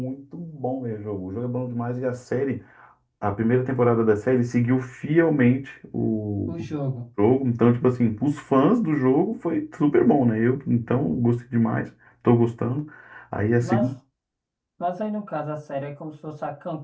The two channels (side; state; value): both; identical; correlation 1.00